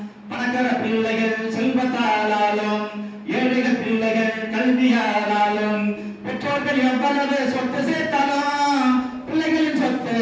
பணக்கார பிள்ளைகள் செல்வத்தாலும் ஏழைகள் பிள்ளைகள் கல்வியாலும் பெற்றோர்கள் எவ்வளவு சொத்து சேர்த்தாலும் பிள்ளைகளின் சொத்து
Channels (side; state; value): both; identical; correlation 1.00